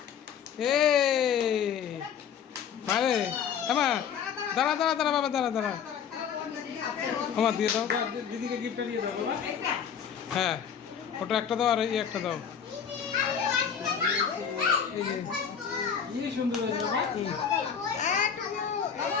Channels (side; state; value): right; quieter; 7.7 dB